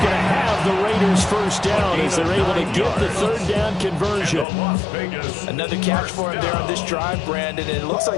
to have the Raiders 1st down as they're able to get the 3rd down conversion. Another catch for him there on this drive, Brandon, and it looks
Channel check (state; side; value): drops out; right; at 4.5 s